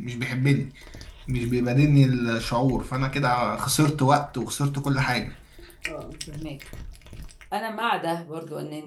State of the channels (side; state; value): both; identical; correlation 1.00